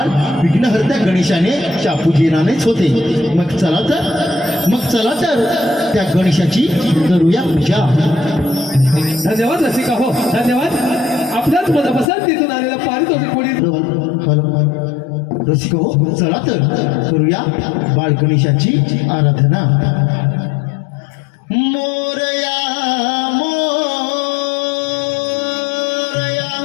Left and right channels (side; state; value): right; drops out; at 12.1 s